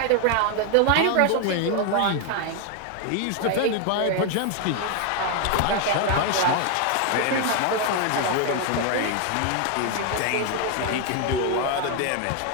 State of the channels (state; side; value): different; both; correlation 0.01